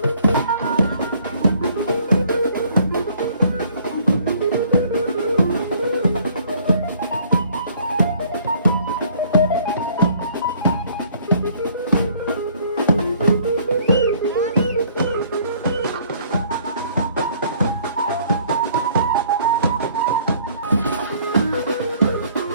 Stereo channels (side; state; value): both; inverted; correlation -0.59